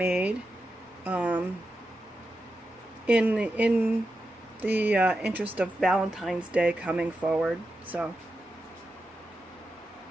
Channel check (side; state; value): both; normal; correlation 0.89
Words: in the interest of Valentine's Day coming forward. So